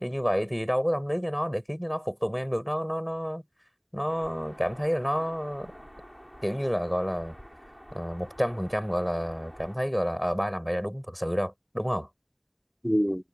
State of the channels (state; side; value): identical; both; correlation 1.00